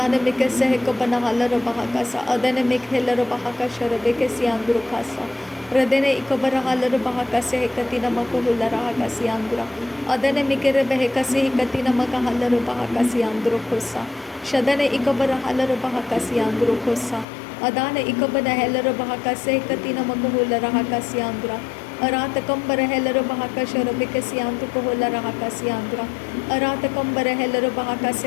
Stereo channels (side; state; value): right; drops out; at 17.2 s